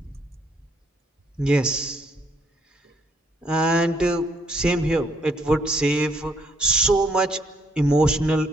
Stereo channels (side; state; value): both; normal; correlation 0.69